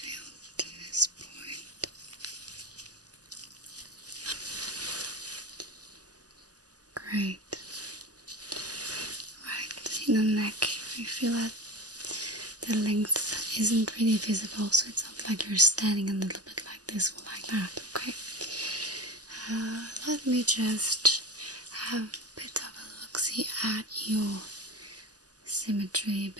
to this point. Great. Right, in the neck, I feel that the length isn't really visible, so it's not like you're standing a little bit like this or like that, okay? Let me just have a bit of a look-see at your symmetry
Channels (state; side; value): late; left; 0.67 ms